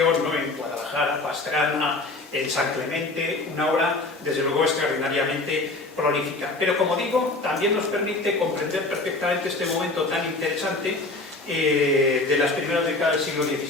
¿no?, en Guadalajara, Pastrana, en San Clemente, una obra desde luego extraordinariamente prolífica. Pero como digo, también nos permite comprender perfectamente este momento tan interesante de las primeras décadas del siglo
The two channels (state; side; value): quieter; right; 3.1 dB